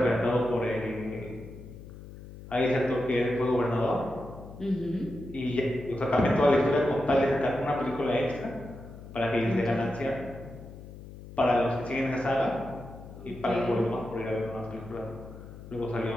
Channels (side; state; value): left; noise; hum, 15 dB below the sound